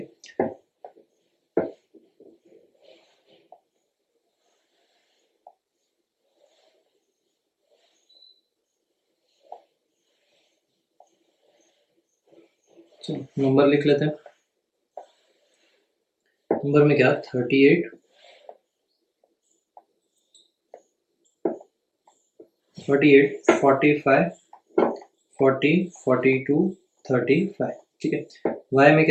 चलो नंबर लिख लेते हैं। नंबर में क्या 38 45 40 42 35। ठीक है, y में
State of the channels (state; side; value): identical; both; correlation 1.00